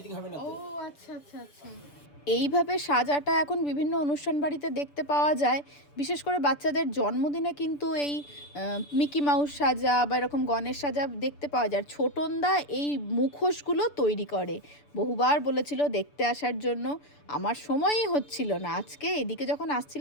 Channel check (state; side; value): late; right; 6.9 ms